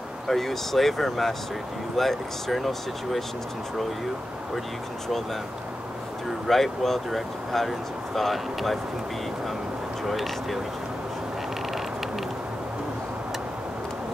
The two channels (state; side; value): normal; both; correlation 0.91